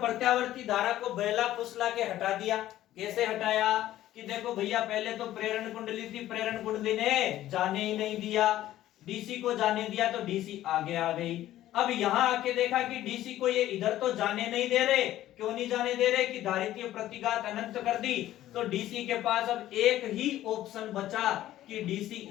धारा को बहला फुसला के हटा दिया। कैसे हटाया? कि देखो भैया, पहले तो प्रेरण कुंडली थी, प्रेरण कुंडली ने जाने ही नहीं दिया, DC को जाने दिया तो DC आगे आ गई। अब यहाँ आके देखा कि DC को ये इधर तो जाने नहीं दे रहे। क्यों नहीं जाने दे रहे? कि धारितीय प्रतिघात अनंत कर दी, तो DC के पास अब एक ही ऑप्शन बचा कि DC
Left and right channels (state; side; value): quieter; right; 13.7 dB